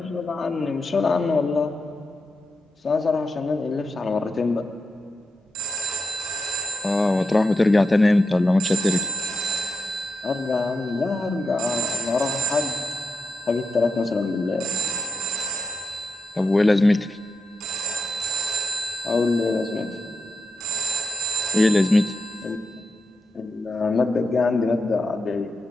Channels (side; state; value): both; normal; correlation 0.86